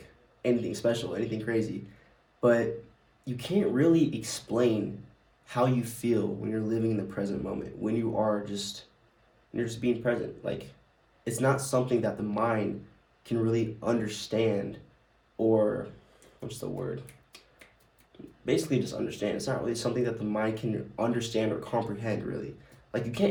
anything special, anything crazy. But you can't really explain how you feel when you're living in the present moment, when you're just being present. Like it's not something that the mind can really understand or what's the word? Basically just understand. It's not really something that the mind can understand or comprehend really. Like you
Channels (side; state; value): both; identical; correlation 1.00